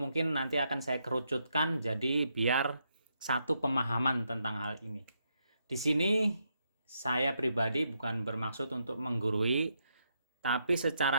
nanti akan saya kerucutkan jadi biar satu pemahaman tentang hal ini. Di sini saya pribadi bukan bermaksud untuk menggurui, tapi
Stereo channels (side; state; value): both; inverted; correlation -0.79